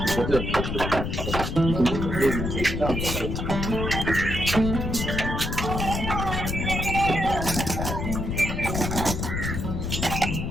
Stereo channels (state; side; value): noise; left; rumble, 3 dB below the sound